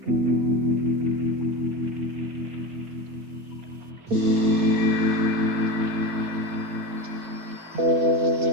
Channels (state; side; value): late; left; 4.3 ms